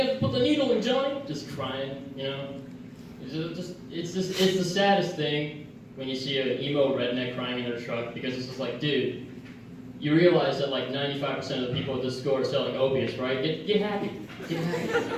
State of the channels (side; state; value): both; identical; correlation 1.00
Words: have to put the needle in, Johnny. Just crying, It's the saddest thing when you see an emo redneck crying in their truck, because it's just like, dude, you realize that like 95% of the people at this store are selling opiates, right? Get happy. Get